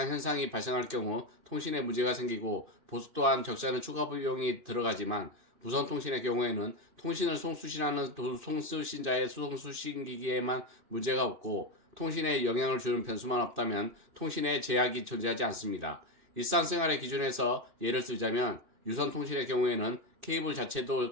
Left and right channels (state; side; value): late; left; 2.5 ms